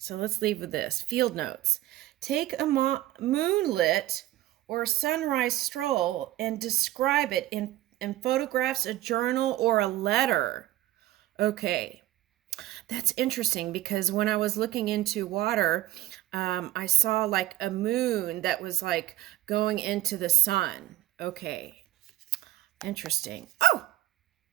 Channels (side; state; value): left; quieter; 15.5 dB